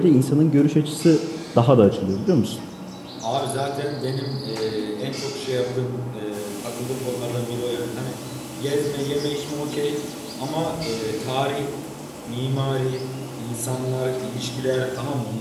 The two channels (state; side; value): identical; both; correlation 1.00